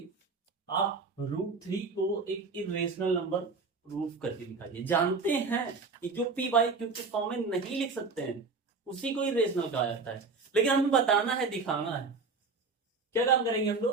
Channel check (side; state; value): left; quieter; 4.3 dB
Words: आप √3 को एक इरेशनल नंबर प्रूफ करके दिखाइए। जानते हैं कि जो p बाई क्यू के फॉर्म में नहीं लिख सकते हैं उसी को इरेशनल कहा जाता है, लेकिन हमें बताना है, दिखाना है। क्या काम करेंगे हम